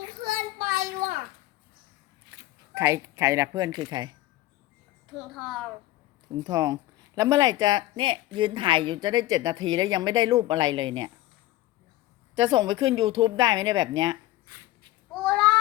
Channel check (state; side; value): quieter; right; 16.4 dB